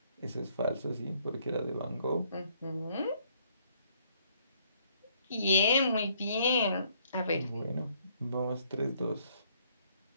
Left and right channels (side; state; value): both; inverted; correlation -0.67